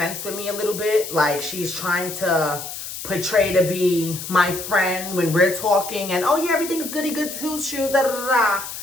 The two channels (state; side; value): noise; left; hiss, 9 dB below the sound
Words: with me a little bit. Like, she's trying to portray to be my friend when we're talking. And, oh, yeah, everything's goody good too, shoes, da da da da.